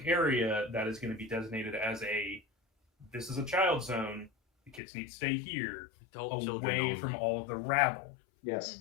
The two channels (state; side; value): drops out; right; at 4.8 s